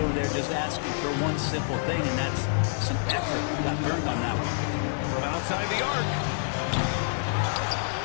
there just asking for one simple thing, and that's some effort. Got burned on that one. From outside the arc.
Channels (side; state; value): right; silent; digital silence